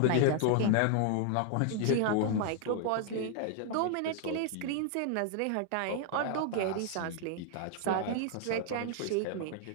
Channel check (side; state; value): both; different; correlation 0.00